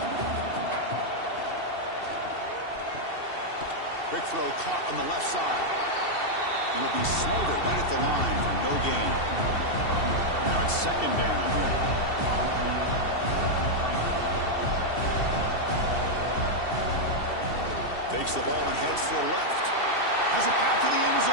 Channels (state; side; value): late; right; 2.7 ms